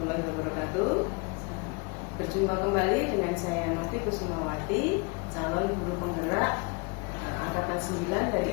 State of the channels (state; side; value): quieter; right; 30.4 dB